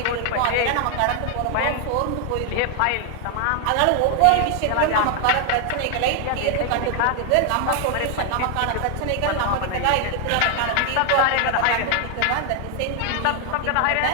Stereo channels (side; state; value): both; different; correlation 0.00